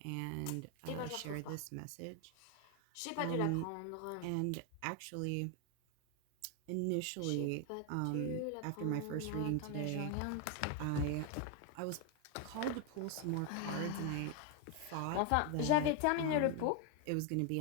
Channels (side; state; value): both; different; correlation 0.01